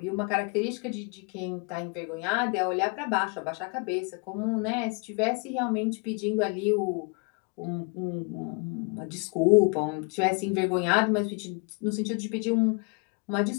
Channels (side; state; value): right; quieter; 33.7 dB